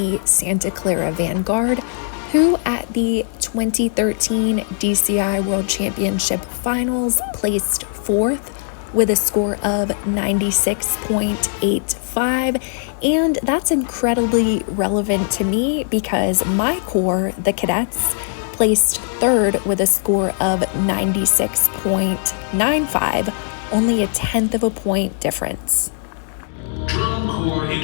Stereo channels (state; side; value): silent; right; 65 dB below the other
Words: Santa Clara Vanguard, who at the 2013 DCI World Championship Finals placed fourth with a score of 96.85, and that's incredibly relevant to me because my corps, the Cadets, placed third with a score of 96.95, only a tenth of a point difference. Drum Corps